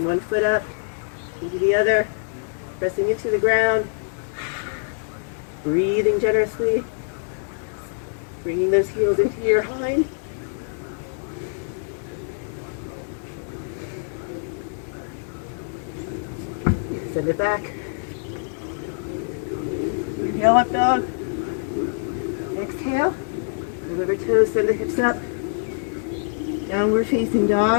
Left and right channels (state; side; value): silent; right; digital silence